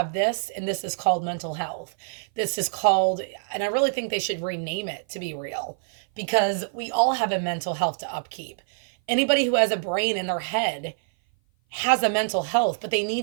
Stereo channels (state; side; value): silent; left; 56 dB below the other